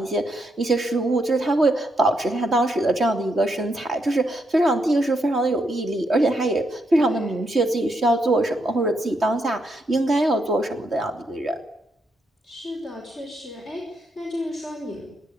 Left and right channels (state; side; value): normal; both; correlation 0.79